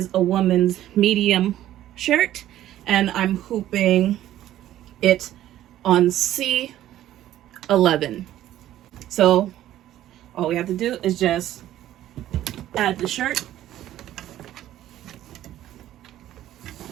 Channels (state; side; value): quieter; left; 13.0 dB